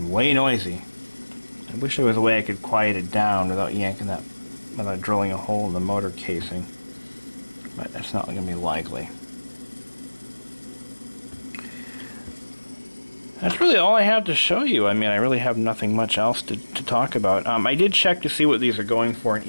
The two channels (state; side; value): inverted; both; correlation -1.00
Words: way noisy. I wish there was a way I could quiet it down without yanking that, without drilling a hole in the motor casing. But that's not going to be likely. That's really all I have to show you. I mean, I really have nothing much else to talk about. I did check to see what these are going for on